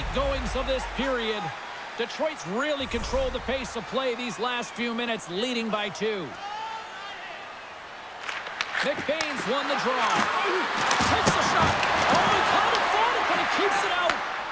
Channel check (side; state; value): both; identical; correlation 1.00